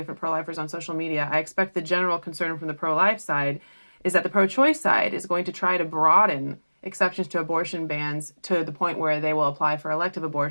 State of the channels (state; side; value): inverted; both; correlation -1.00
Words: pro-lifers on social media, I expect the general concern from the pro-life side is that the pro-choice side is going to try to broaden exceptions to abortion bans to the point where they will apply for elective